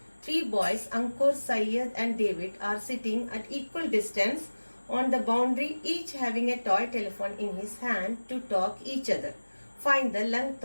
Three boys, Ankur, Syed and David, are sitting at equal distance on the boundary, each having a toy telephone in his hand to talk each other. Find the length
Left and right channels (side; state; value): both; inverted; correlation -1.00